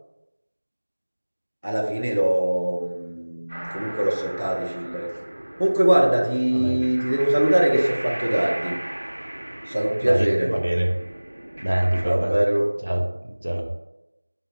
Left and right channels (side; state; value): both; inverted; correlation -1.00